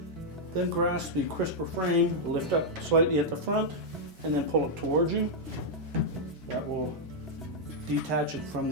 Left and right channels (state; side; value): normal; both; correlation -0.04